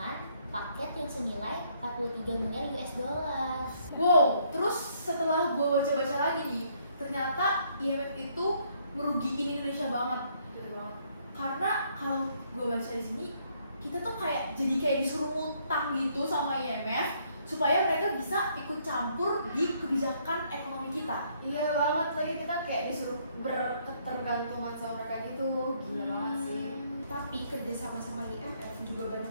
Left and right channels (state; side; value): inverted; both; correlation -0.68